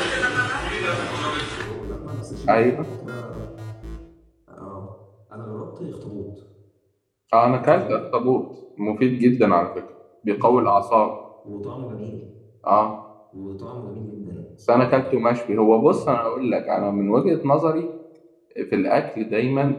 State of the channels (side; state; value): both; identical; correlation 1.00